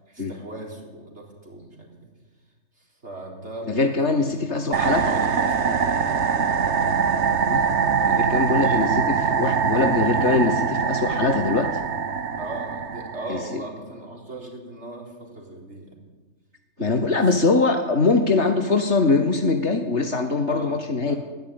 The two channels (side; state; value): left; late; 3.3 ms